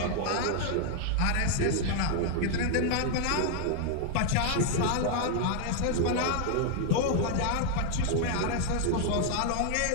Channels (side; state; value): both; different; correlation 0.00